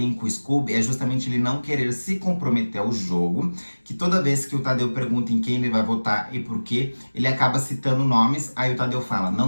com o Scooby é justamente ele não querer se comprometer ao jogo, que toda vez que o Tadeu pergunta em quem ele vai votar e por quê, ele acaba citando nomes, aí o Tadeu fala,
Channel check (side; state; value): both; inverted; correlation -1.00